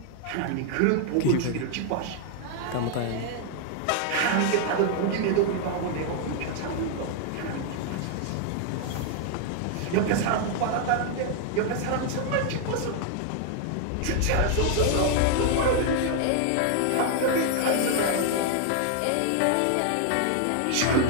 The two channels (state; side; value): different; both; correlation 0.00